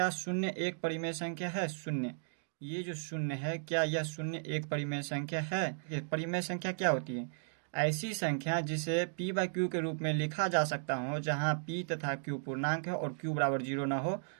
शून्य एक परिमेय संख्या है? शून्य, ये जो शून्य है, क्या यह शून्य एक परिमेय संख्या है? ये परिमेय संख्या क्या होती है? ऐसी संख्या जिसे p बाय क्यू के रूप में लिखा जा सकता हो, जहाँ p तथा q पूर्णांक है और q बराबर 0 ना हो,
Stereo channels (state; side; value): silent; left; digital silence